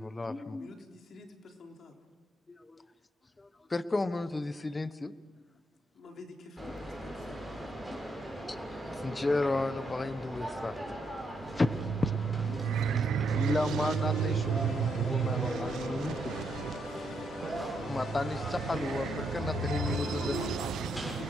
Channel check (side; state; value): both; normal; correlation 0.78